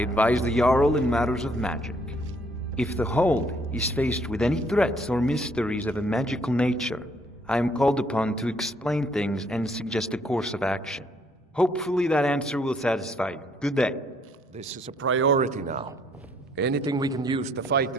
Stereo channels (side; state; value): both; normal; correlation 0.66